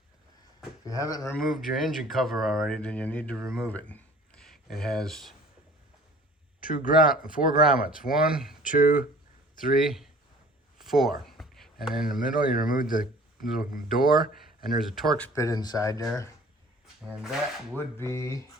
If you haven't removed your engine cover already, then you need to remove it. It has four grommets. 1, 2, 3, 4. And in the middle, you remove the little door, and there's a Torx bit inside there. And that would be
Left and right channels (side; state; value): both; normal; correlation 0.49